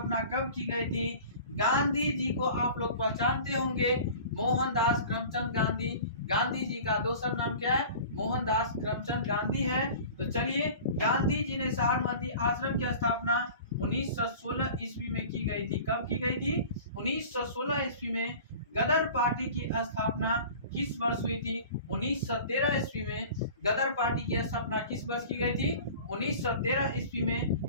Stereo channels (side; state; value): both; inverted; correlation -0.41